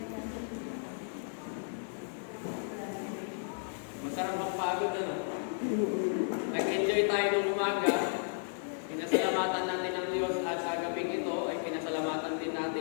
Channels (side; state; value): right; silent; digital silence